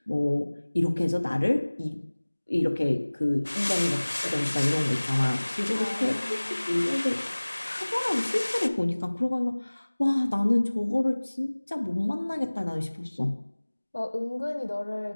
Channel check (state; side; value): inverted; both; correlation -1.00